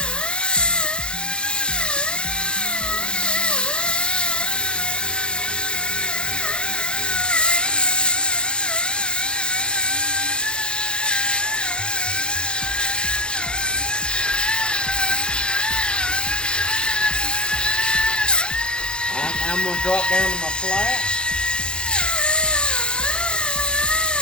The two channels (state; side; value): late; right; 0.050 ms